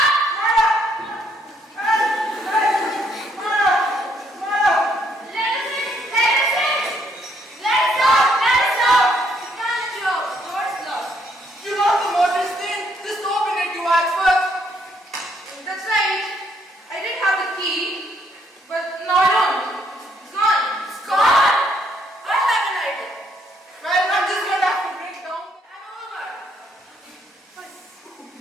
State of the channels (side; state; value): both; normal; correlation 0.71